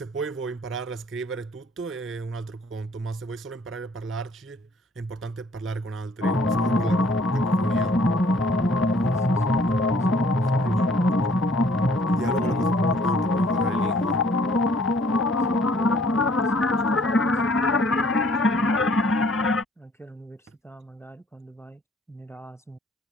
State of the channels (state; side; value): normal; both; correlation 0.59